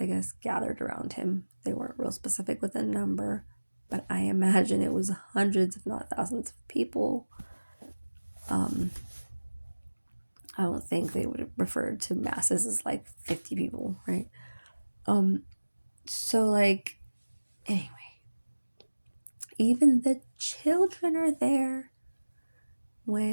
guess, gathered around him. They weren't real specific with a number, but I imagine it was hundreds, if not thousands of people. I don't think they would have referred to masses as like 50 people, right? So like, anyway, even the children are there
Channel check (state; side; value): inverted; both; correlation -1.00